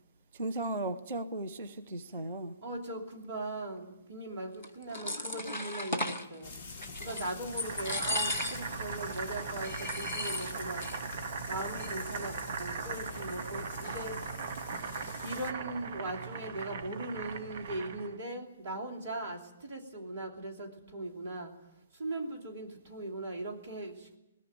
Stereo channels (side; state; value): both; inverted; correlation -0.55